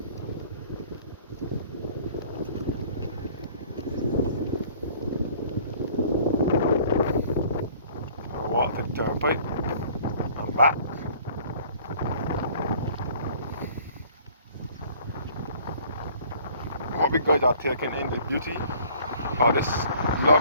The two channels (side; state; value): both; inverted; correlation -0.53